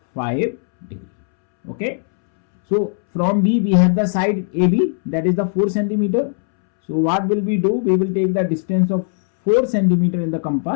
degree. Okay, so from B we have the side AB, that is the 4 centimeter. So what will we do? We will take the distance of 4 centimeter in the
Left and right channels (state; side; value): silent; right; 67 dB below the other